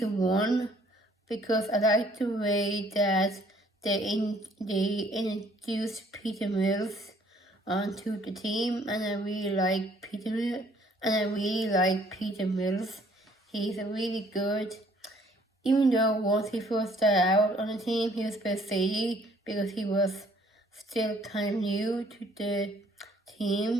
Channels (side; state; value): both; normal; correlation 0.61